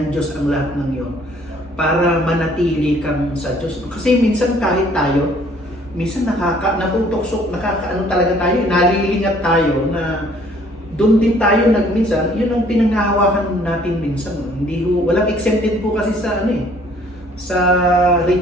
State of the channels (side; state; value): both; normal; correlation 0.59